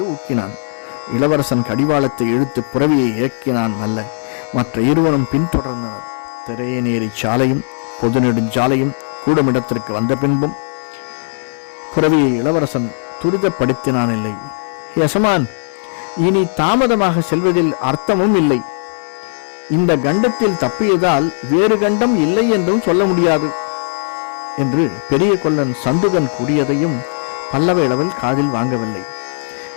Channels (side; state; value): right; silent; digital silence